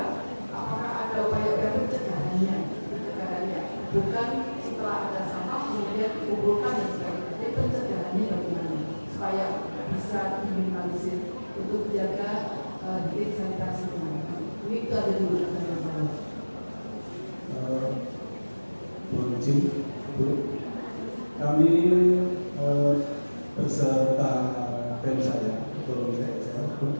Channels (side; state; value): both; inverted; correlation -1.00